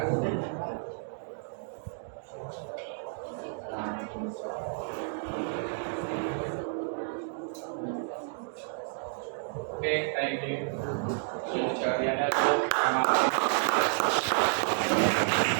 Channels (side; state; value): left; silent; digital silence